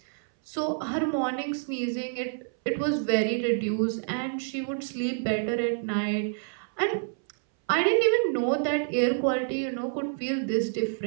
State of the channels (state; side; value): silent; left; 59 dB below the other